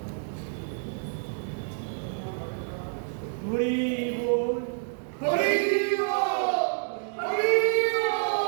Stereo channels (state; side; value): silent; left; digital silence